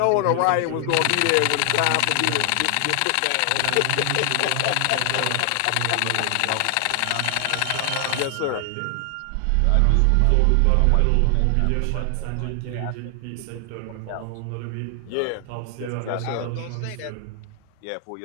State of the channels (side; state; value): both; different; correlation 0.00